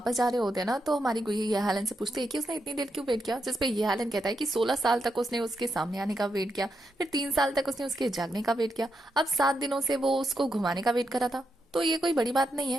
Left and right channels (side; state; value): both; normal; correlation 0.83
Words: जा रहे होते हैं ना तो हमारी गुई ये हालन से पूछती है कि उसने इतनी देर क्यों वेट किया। जिसपे ये हालन कहता है कि 16 साल तक उसने उसके सामने आने का वेट किया, फिर 3 साल तक उसने उसके जागने का वेट किया, अब 7 दिनों से वो उसको घुमाने का वेट करा था। तो ये कोई बड़ी बात नहीं